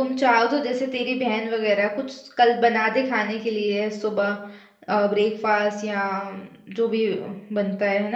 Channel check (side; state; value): both; identical; correlation 1.00